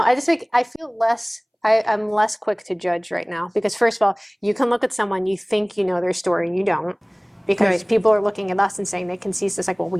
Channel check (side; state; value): both; identical; correlation 1.00